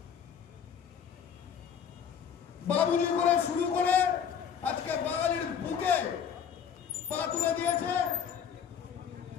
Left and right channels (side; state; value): right; quieter; 7.8 dB